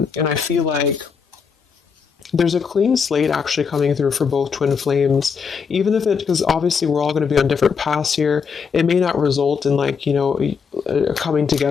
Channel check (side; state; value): right; quieter; 6.0 dB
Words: I feel like there's a clean slate actually coming through for both twin flames, even if because obviously we're all going to be on different paths here. It may not result in coming